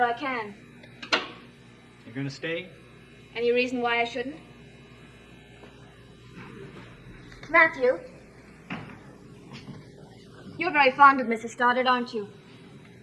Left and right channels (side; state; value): both; identical; correlation 1.00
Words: I can. You gonna stay? Any reason why I shouldn't? Matthew, you're very fond of Mrs. Stoddard, aren't you?